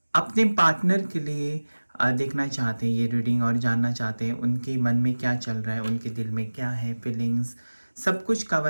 अपने पार्टनर के लिए देखना चाहते हैं ये रीडिंग और जानना चाहते हैं उनके मन में क्या चल रहा है, उनके दिल में क्या है, फीलिंग्स, सब कुछ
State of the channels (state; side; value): inverted; both; correlation -1.00